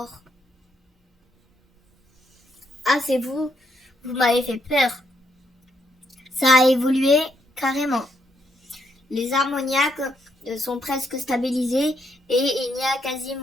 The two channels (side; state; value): both; normal; correlation 0.76